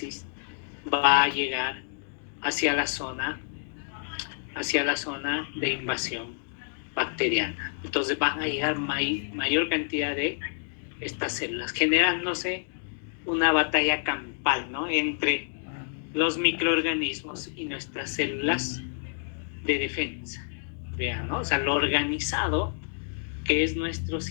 va a llegar hacia la zona de invasión bacteriana. Entonces van a llegar mayor cantidad de estas células, generándose una batalla campal, ¿no? Entre los microorganismos y nuestras células de defensa. Vean, ¿no? O sea, lo organizado que es nuestro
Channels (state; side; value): silent; right; digital silence